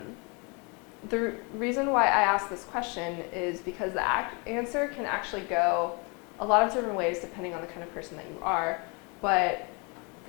the reason why I ask this question is because the answer can actually go a lot of different ways depending on the kind of person that you are. But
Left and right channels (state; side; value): quieter; right; 31.8 dB